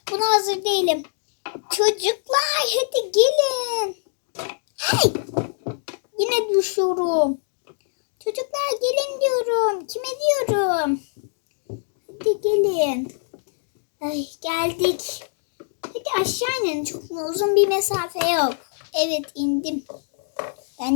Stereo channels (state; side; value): silent; right; digital silence